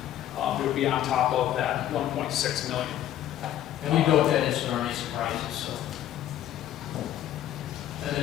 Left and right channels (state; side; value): quieter; right; 12.0 dB